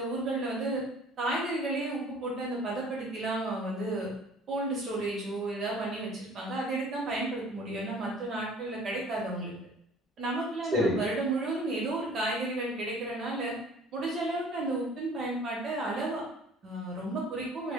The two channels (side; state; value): both; normal; correlation 0.50